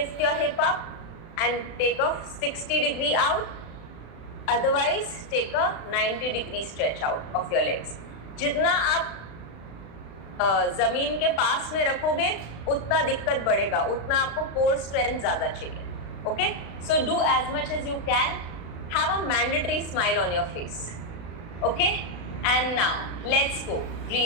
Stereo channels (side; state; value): right; late; 35 ms